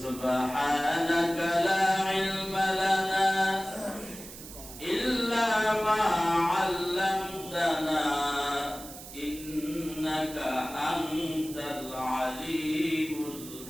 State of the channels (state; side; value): noise; right; hiss, 14 dB below the sound